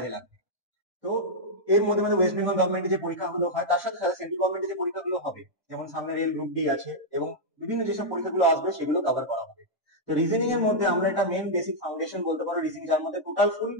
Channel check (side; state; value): both; normal; correlation -0.05